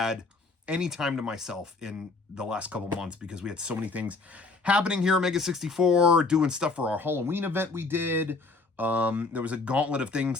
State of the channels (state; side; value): quieter; right; 3.7 dB